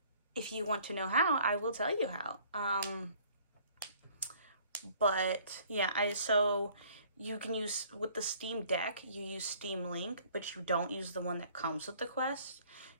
if you want to know how, I will tell you how. But, yeah, so you can use, with the Steam Deck, you use Steam Link, but you don't use the one that comes with the Quest.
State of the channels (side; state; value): both; inverted; correlation -0.56